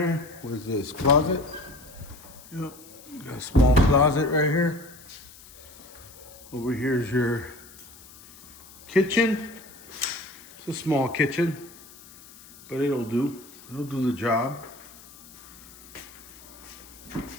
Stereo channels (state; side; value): noise; left; hiss, 20 dB below the sound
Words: What is this? Closet? Yep. Got a small closet right here. Over here is your kitchen. It's a small kitchen, but it'll do. It'll do the job.